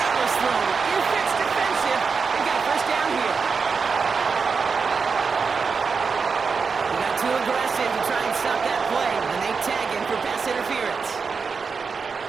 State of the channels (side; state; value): left; quieter; 5.2 dB